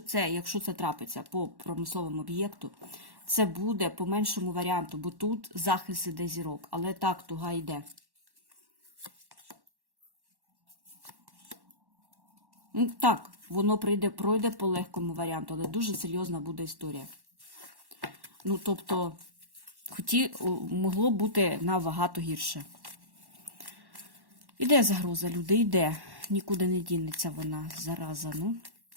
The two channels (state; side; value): late; left; 1.1 ms